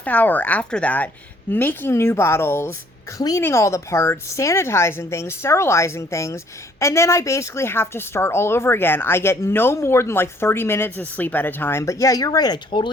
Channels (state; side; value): normal; both; correlation 0.62